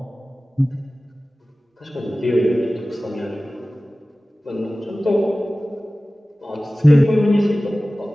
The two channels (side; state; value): both; normal; correlation 0.97